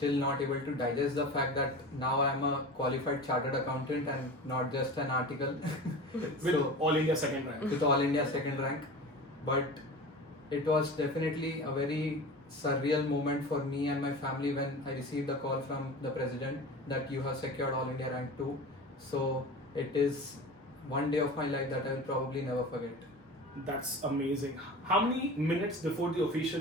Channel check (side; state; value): both; normal; correlation 0.33